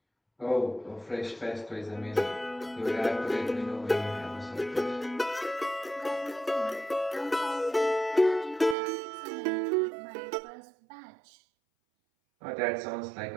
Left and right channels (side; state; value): left; drops out; at 8.8 s